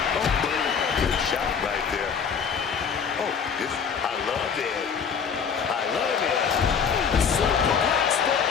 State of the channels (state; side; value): quieter; right; 6.6 dB